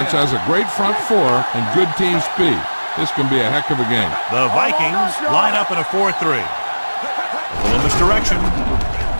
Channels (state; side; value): inverted; both; correlation -1.00